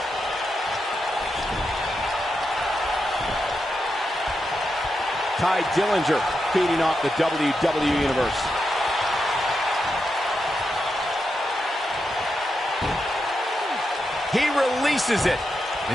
Ty Dillinger feeding off the WWE Universe. He releases it.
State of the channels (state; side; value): normal; both; correlation 0.86